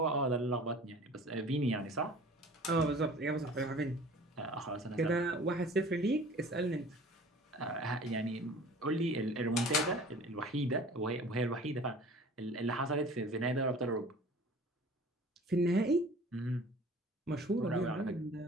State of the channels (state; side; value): normal; both; correlation 0.45